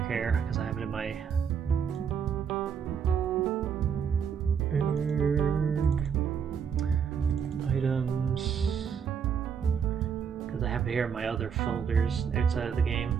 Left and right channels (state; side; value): quieter; left; 7.1 dB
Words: here because I have it in my items. Because I have it here in my other folders outside of the game.